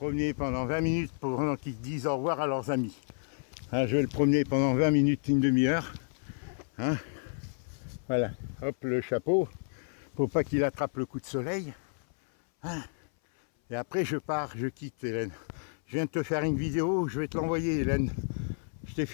pendant 20 minutes pendant qu'ils disent au revoir à leurs amis. Hein, je vais le promener pendant 20 minutes, une demi-heure. Hein, voilà, hop, le chapeau. Faut pas qu'il attrape le coup de soleil. Hein, et après je pars, je quitte Hélène. Je viens de te faire une vidéo, je vais te l'envoyer Hélène. Je t'ai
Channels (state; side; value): silent; right; 57 dB below the other